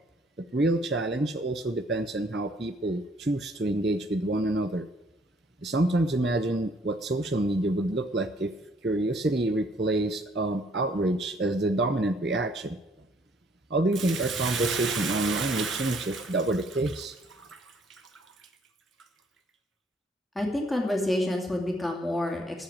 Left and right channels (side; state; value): both; normal; correlation 0.63